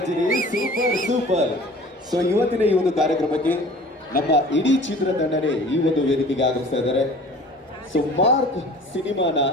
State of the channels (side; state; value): both; normal; correlation 0.45